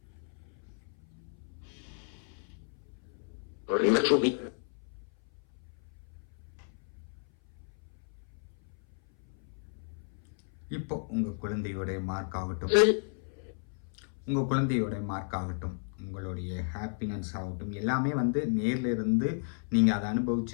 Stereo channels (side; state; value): right; silent; 56 dB below the other